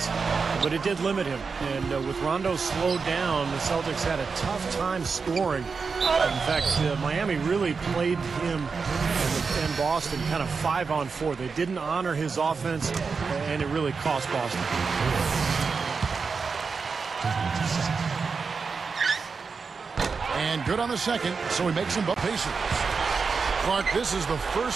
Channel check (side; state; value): left; quieter; 5.0 dB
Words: but it did limit him. And with Rondo slowed down, the Celtics had a tough time scoring. In fact, Miami really played him and Boston kind of 5-on-4. They didn't honor his offense, and it really cost Boston. And good on the second, so he makes them both Pacers. Clark, this is the